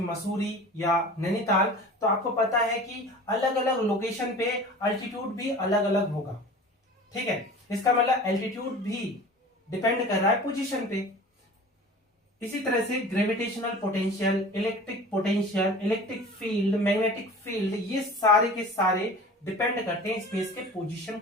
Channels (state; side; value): normal; both; correlation 0.40